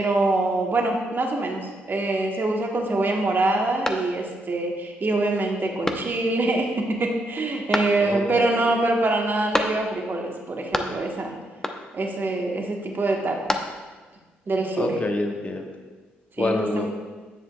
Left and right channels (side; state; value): both; normal; correlation 0.79